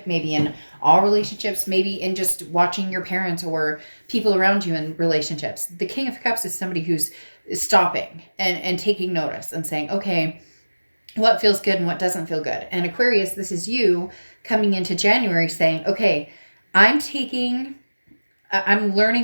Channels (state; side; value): inverted; both; correlation -1.00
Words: maybe in all relationships, maybe in just watching your parents or people around you in relationships. The King of Cups is somebody who's stopping and taking notice and saying, okay, what feels good and what doesn't feel good. And Aquarius, this is you coming into January saying, okay, I'm learning